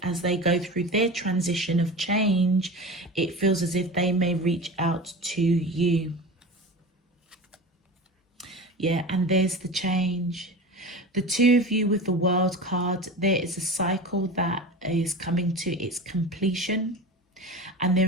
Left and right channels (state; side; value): normal; both; correlation 0.31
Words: as they go through their transition of change, it feels as if they may reach out to you. Yeah, and there's the change. The two of you with the World card, there is a cycle that is coming to its completion, and there